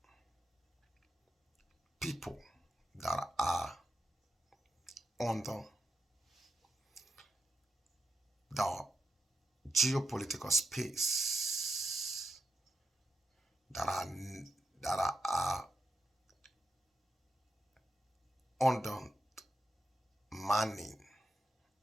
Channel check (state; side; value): normal; both; correlation 0.88